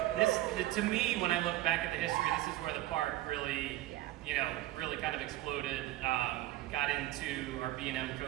this, to me, when I look back at the history, this is where the park really kind of exploded. Got into our B&M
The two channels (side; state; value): left; quieter; 16.1 dB